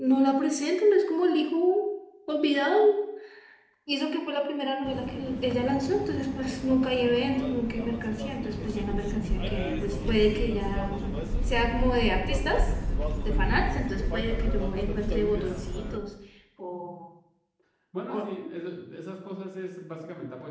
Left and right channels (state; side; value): identical; both; correlation 1.00